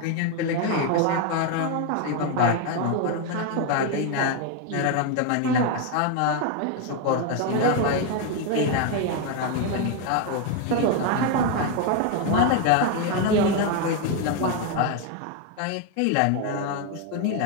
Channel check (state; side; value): different; both; correlation 0.01